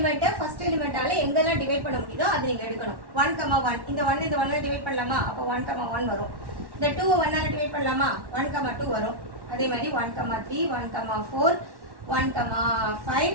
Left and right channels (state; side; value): late; left; 1.1 ms